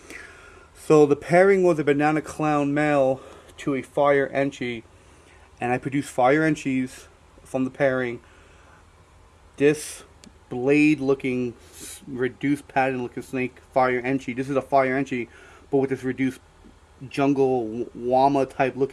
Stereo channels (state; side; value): identical; both; correlation 1.00